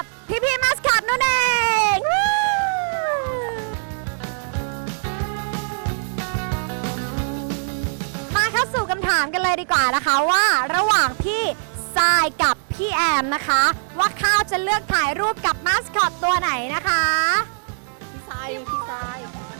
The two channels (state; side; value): silent; left; digital silence